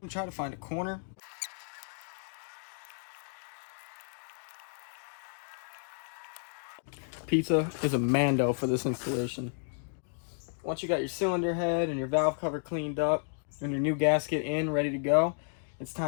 try to find a corner. Pizza is a mando for this installation. Once you got your cylinder head and your valve cover cleaned up and your new gasket in, ready to go, it's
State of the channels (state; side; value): silent; right; 56 dB below the other